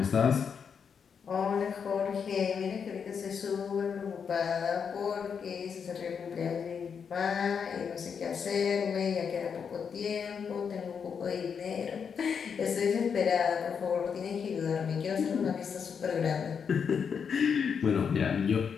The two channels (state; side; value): quieter; right; 6.7 dB